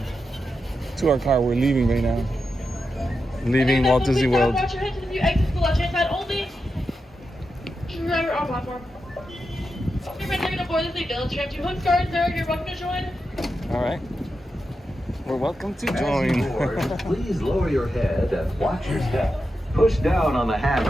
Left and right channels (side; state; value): both; normal; correlation 0.88